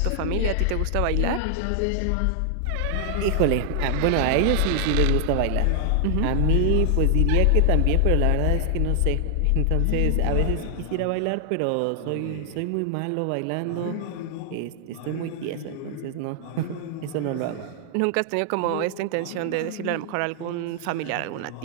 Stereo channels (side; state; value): both; different; correlation 0.00